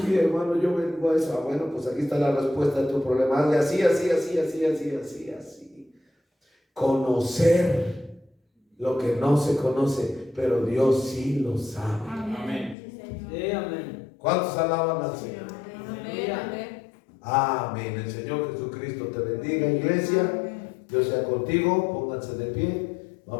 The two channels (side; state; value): right; drops out; at 12.8 s